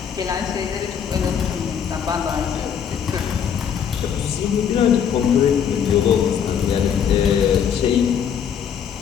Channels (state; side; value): quieter; right; 8.1 dB